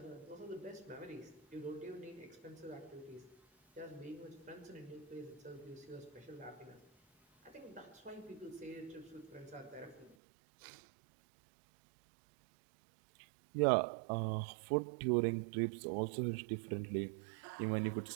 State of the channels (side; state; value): left; drops out; at 10.2 s